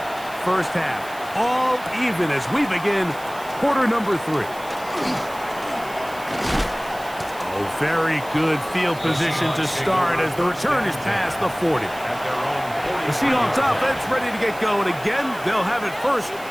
first half. All even as we begin quarter number 3. Oh, very good field position to start as the return is past the 40. At their own The Seahawks offense ready to get going again. They'll have it first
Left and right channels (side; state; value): right; noise; hiss, 19 dB below the sound